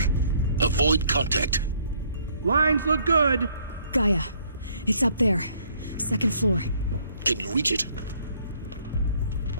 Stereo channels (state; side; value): inverted; both; correlation -0.64